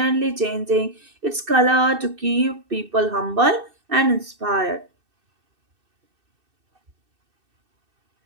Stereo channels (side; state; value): left; late; 2.6 ms